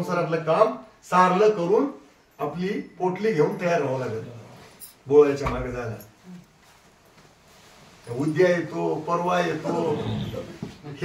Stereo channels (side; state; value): both; identical; correlation 1.00